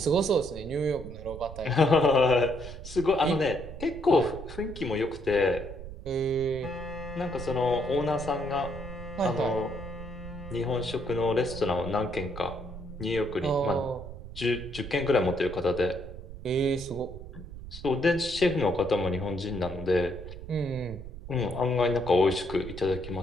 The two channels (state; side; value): noise; right; rumble, 12 dB below the sound